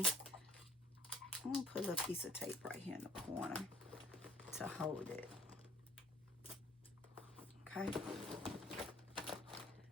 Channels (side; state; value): both; normal; correlation 0.55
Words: I'm gonna put a little piece of tape right here in the corner to hold it. Okay.